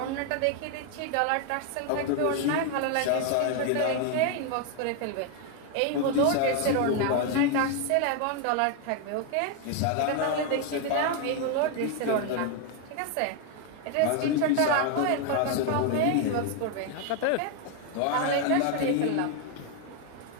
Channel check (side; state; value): both; different; correlation 0.01